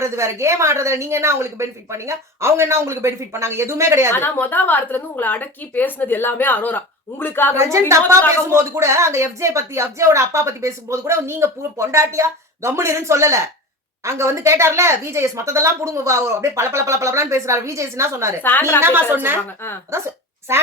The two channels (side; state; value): both; normal; correlation 0.31